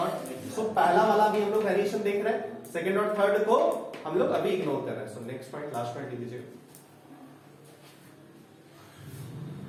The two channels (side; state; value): both; identical; correlation 1.00